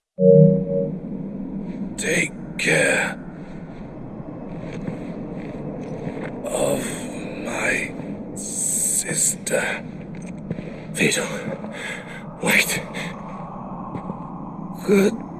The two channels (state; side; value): identical; both; correlation 1.00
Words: Take care of my sister. Theodore, wait.